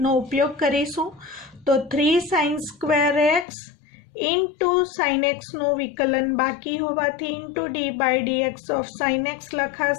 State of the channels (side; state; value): right; drops out; at 3.5 s